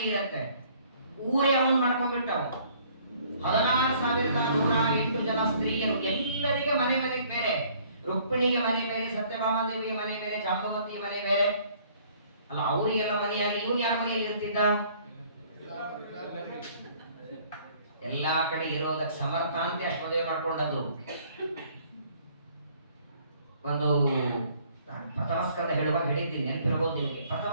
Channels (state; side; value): inverted; both; correlation -0.59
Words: ಇರುತ್ತೆ, ಊರೇ ಅವನು ಮಾಡ್ಕೊಂಡ್ಬಿಟ್ಟವು. 16,108 ಜನ ಸ್ತ್ರೀಯರು, ಎಲ್ಲರಿಗೆ ಮನೆ ಮನೆಗೆ ಬೇರೆ. ರುಕ್ಮಿಣಿಗೆ ಮನೆ ಬೇರೆ, ಸತ್ಯಭಾಮಾದೇವಿಗೆ ಮನೆ ಬೇರೆ, ಜಾಂಬವತಿಗೆ ಮನೆ ಬೇರೆ. ಅಲ್ಲ, ಅವರಿಗೆಲ್ಲ ಮನೆಯಾಗಿ ಇವನು ಯಾರ ಮನೆಯಲ್ಲಿ ಇರ್ತಿದ್ದ? ಎಲ್ಲಾ ಕಡೆ ಇರೋದಕ್ಕೆ ಸಮರ್ಥ ಅಂತ ಅಷ್ಟು ಮದುವೆ ಮಾಡ್ಕೊಂಡದ್ದು. ಒಂದು ನಾನು ಪ್ರಥಮ ಸ್ಕಂದ ಹೇಳುವಾಗ ಹೇಳಿದ್ದೀನಿ, ನೆನಪಿರಬಹುದು ನಿಮಗೆ. ಪ್ರಥಮ